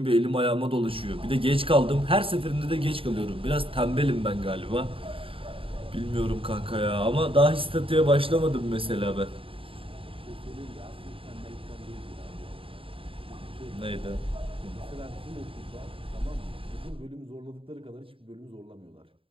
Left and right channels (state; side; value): late; left; 0.26 ms